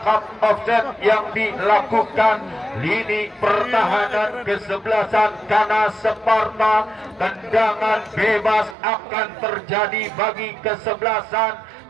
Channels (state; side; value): drops out; left; at 8.8 s